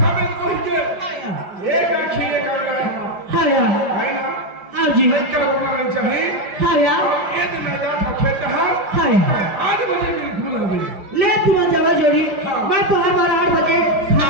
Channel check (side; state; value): left; late; 5.1 ms